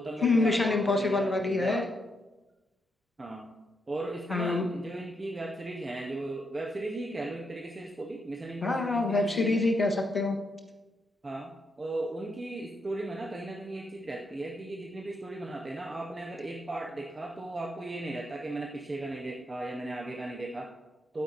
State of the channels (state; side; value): normal; both; correlation 0.80